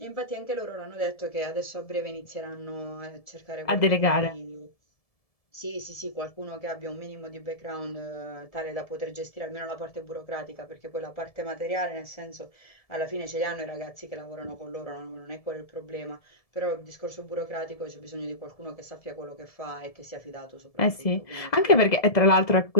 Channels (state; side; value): late; right; 1.7 ms